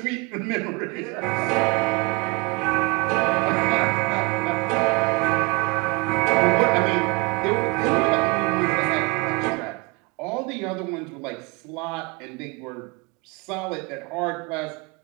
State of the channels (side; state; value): left; quieter; 26.2 dB